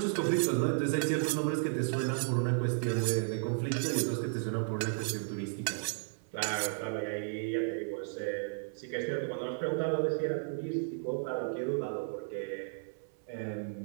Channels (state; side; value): silent; left; 55 dB below the other